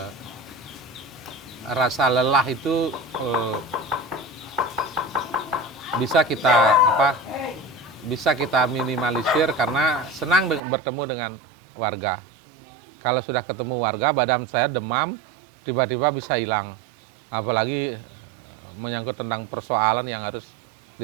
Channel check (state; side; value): drops out; left; at 10.6 s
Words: rasa lelah itu bisa kita minimalisir karena senang bertemu dengan warga. Kalau sudah ketemu warga, badan saya demam, tiba-tiba bisa hilang. Apalagi menyangkut tentang persoalan yang harus